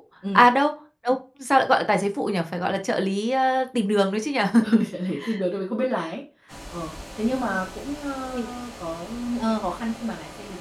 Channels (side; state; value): both; identical; correlation 1.00